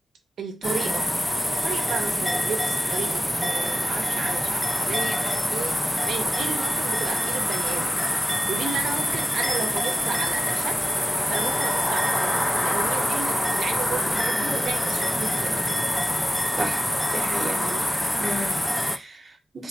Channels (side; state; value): both; normal; correlation 0.95